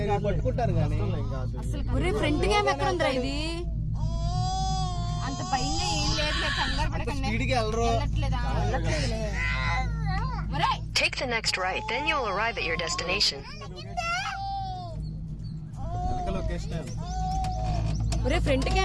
పట్టుకుంటారు కానీ అసలు ఒరే ఫ్రంట్ క్యామ్ ఎక్కడ ఉందిరా ఇది అంత పైన ఏం లేదు కంగారు పడకండి. Take the next right, then you'll arrive at your destination. ఒరే ఫ్రంట్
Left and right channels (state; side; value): identical; both; correlation 1.00